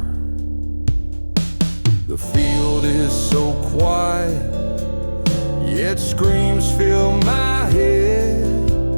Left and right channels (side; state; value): both; inverted; correlation -1.00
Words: The field is so quiet, yet screams fill my head.